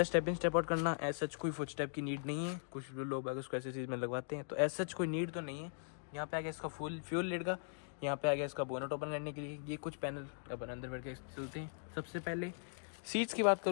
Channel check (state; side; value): silent; right; digital silence